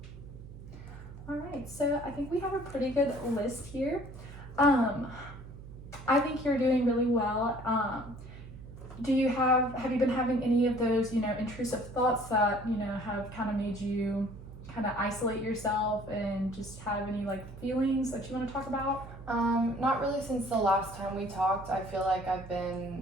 All right, so I think we have a pretty good list here. I think you're doing really well. Have you been having any of those, intrusive thoughts that, have kind of made you kind of isolate yourself and just have any like feelings that you want to talk about? Not really since the last time we talked. I feel like I've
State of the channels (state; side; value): noise; right; hum, 15 dB below the sound